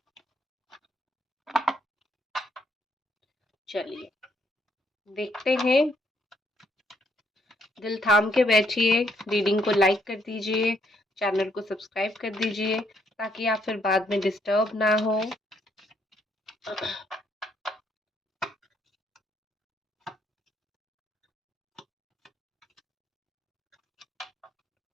चलिए देखते हैं। दिल थाम के बैठिए, रीडिंग को लाइक कर दीजिए, चैनल को सब्सक्राइब कर दीजिए ताकि आप फिर बाद में डिस्टर्ब ना हो।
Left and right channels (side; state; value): both; normal; correlation 0.71